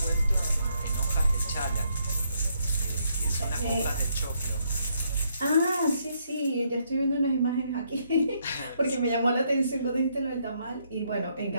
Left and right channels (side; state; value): both; inverted; correlation -0.74